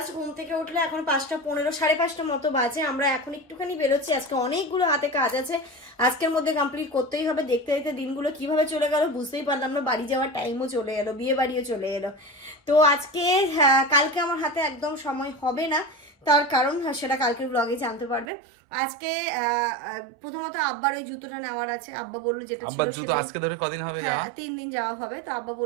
ঘুম থেকে উঠলে এখন 5:15, 5:30 মতো বাজে। আমরা এখন একটুখানি বেরোচ্ছি, আজকে অনেকগুলো হাতে কাজ আছে, আজকের মধ্যে কমপ্লিট করতেই হবে। দেখতে দেখতে দিনগুলো কিভাবে চলে গেল বুঝতেই পারলাম না, বাড়ি যাওয়ার টাইমও চলে এলো, বিয়ে বাড়িও চলে এলো। তো আজকে কালকে আমার হাতে একদম সময় হবে না, তার কারণ সেটা কালকের ব্লগে জানতে পারবে। আজকে প্রথমত আব্বার ওই জুতোটা নেওয়ার আছে, আব্বা বললো যেটা আব্বার জুতো আজকে ধরে কদিন হবে যাওয়া? 3 দিন যাওয়া হবে, তো আব্বা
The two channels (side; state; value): left; drops out; at 18.2 s